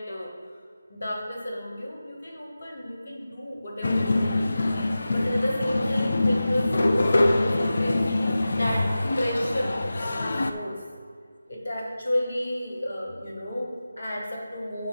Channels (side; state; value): both; inverted; correlation -0.95